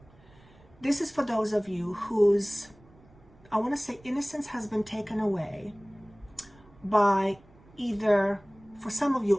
This is for those of you whose, I want to say, innocence has been taken away by either, for some of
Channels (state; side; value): noise; right; rumble, 26 dB below the sound